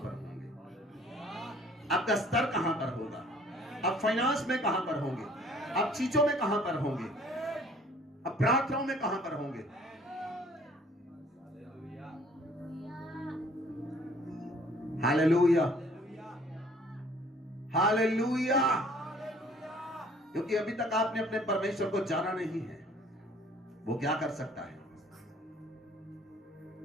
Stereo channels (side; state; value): both; normal; correlation 0.56